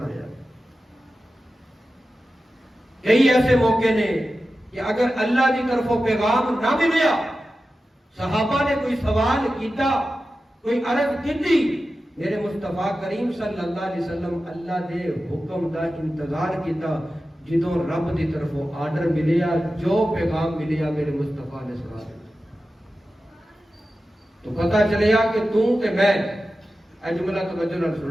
کئی ایسے موقع نے کہ اگر اللہ کی طرف وہ پیغام نہ ملیا، صحابہ نے کوئی سوال کیتا، کوئی عرض کی، میرے مصطفیٰ کریم صلی اللہ علیہ وسلم اللہ دے حکم دا انتظار کیتا، جدوں رب دی طرف وہ آرڈر ملیا، جو پیغام ملیا میرے مصطفیٰ نے سنا دیا۔ تو پتہ چلیا کہ تو تے میں، اے جملہ توجہ نال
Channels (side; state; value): both; normal; correlation 0.93